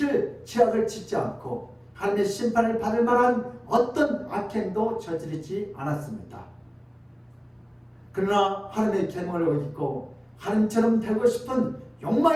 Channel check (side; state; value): both; identical; correlation 1.00